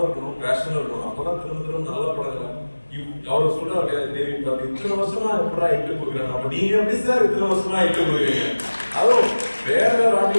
இருக்கணும், பேஷனும் இருக்கணும். அப்பதான் திரும்ப நல்ல படங்கள் அவர் சொல்றாரு தேவி இத்தனை வருஷமா எப்படா இட்டு கொடுக்குறாங்க. அப்ப நீங்க எப்படி சார் இத்தனை வருஷமா இட்டு கொடுக்குறீங்க? அதுவும் வேற வேற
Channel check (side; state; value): both; inverted; correlation -1.00